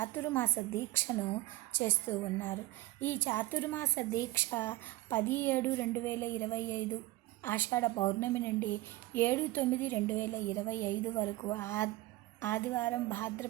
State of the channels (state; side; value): quieter; left; 18.0 dB